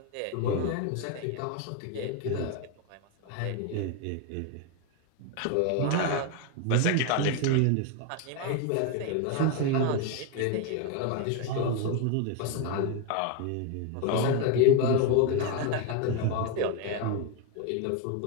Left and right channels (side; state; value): both; different; correlation 0.02